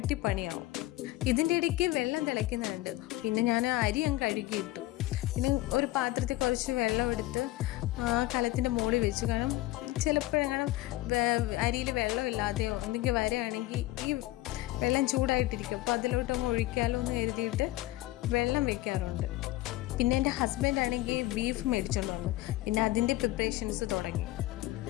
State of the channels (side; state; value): right; quieter; 17.3 dB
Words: പണിയാവും. ഇതിൻ്റെ ഇടയ്ക്ക് വെള്ളം തിളയ്ക്കുന്നുണ്ട്. പിന്നെ ഞാൻ അരി അങ്ങ് കഴുകിയിട്ടു. പിന്നെ ഒരു പാത്രത്തിൽ കുറച്ച് വെള്ളം എടുത്ത് കലത്തിൻ്റെ മുകളിൽ വെച്ചു. കാരണം ചിലപ്പോഴെങ്ങനെ അരിയിൽ വെള്ളമില്ലാതെയോ എന്തെങ്കിലും വരികയാണെങ്കിൽ ഈ വെള്ളം ചൂടായിട്ടിരിക്കും. അപ്പോൾ അതിലോട്ടൊന്ന് ഒഴിക്കാലോ എന്ന് കരുതിയിട്ട് വെള്ളം വെക്കാറുണ്ട്. പിന്നെ എൻ്റെ ഹസ്ബൻഡ് ആണെങ്കിൽ ബീഫ് മേടിച്ചുകൊണ്ട് വന്നു. പിന്നെ അതിൻ്റെ പ്രിപ്പറേഷൻസ് തുടങ്ങി.